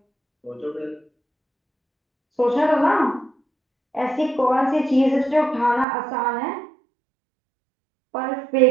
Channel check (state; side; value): drops out; left; at 5.9 s